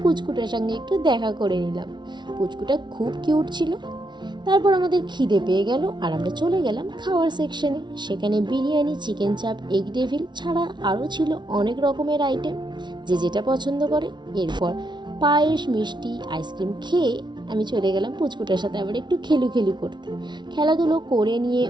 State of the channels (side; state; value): left; late; 0.22 ms